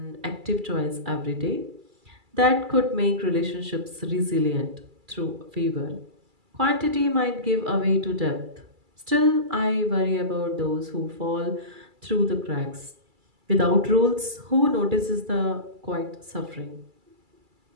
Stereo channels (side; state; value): left; late; 2.3 ms